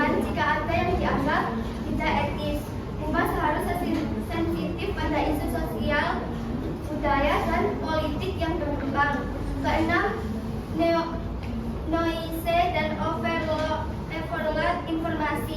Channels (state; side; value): identical; both; correlation 1.00